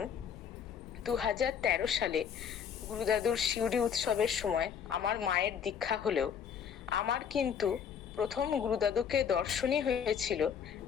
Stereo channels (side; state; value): right; quieter; 7.6 dB